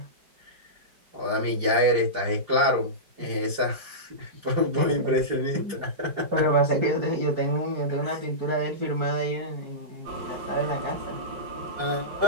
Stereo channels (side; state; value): left; late; 4.8 ms